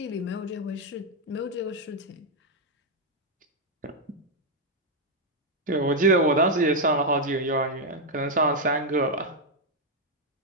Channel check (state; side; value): normal; both; correlation 0.00